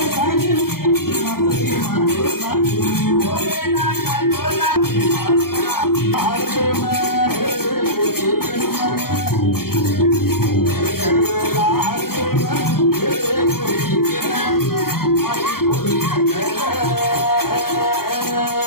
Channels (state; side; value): late; right; 0.93 ms